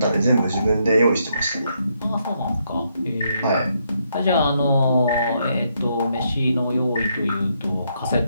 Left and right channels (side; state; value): both; inverted; correlation -0.76